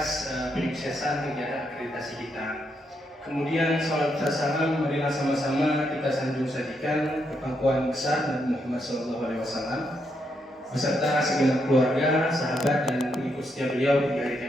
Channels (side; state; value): both; normal; correlation 0.79